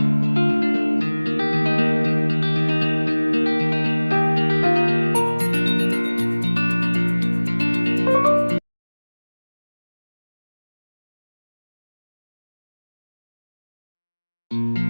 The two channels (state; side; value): inverted; both; correlation -1.00